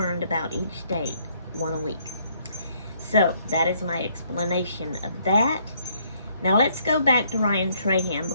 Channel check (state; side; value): inverted; both; correlation -0.67